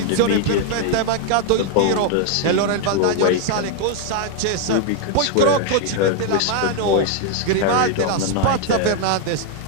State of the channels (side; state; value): both; different; correlation 0.00